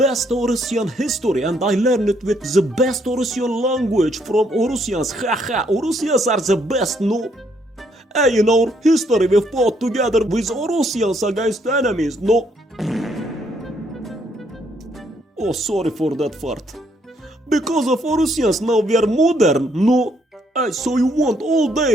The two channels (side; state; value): both; normal; correlation 0.71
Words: Orusian history, and I learned it with the best Orusian language from Orusians. Haha, Orusians are the best, no? Hey, in our history we fought together with Orusians against enemies, no? Oh, sorry for that fart. Because of Orusians now we are modern, no? So you want old